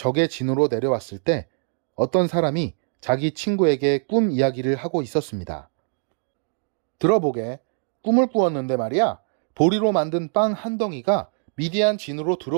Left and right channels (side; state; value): left; silent; digital silence